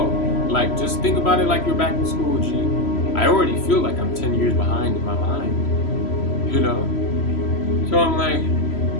like, just think about it like you're back in school, G. I already feel like I'm 10 years behind in my mind, you know? So I'm like,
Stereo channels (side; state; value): right; late; 3.0 ms